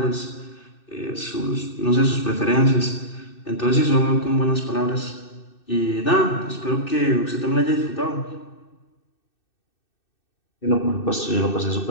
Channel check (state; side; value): late; right; 2.6 ms